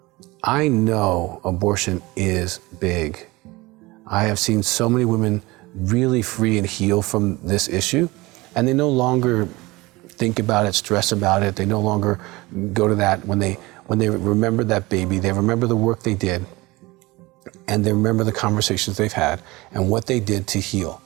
I know abortion is big. I have seen so many women really free and heal from this issue, and they no longer think about it, stress about it. They no longer go to that when they remember that baby, they remember the work they did, and they remember the conversations they've had and what they did to heal.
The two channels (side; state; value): left; quieter; 21.7 dB